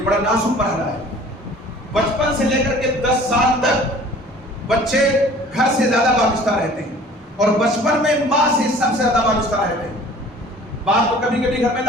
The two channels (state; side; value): normal; both; correlation 0.49